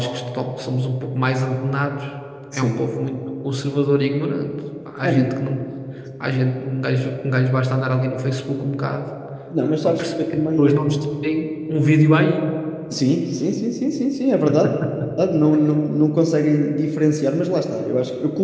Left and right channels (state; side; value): identical; both; correlation 1.00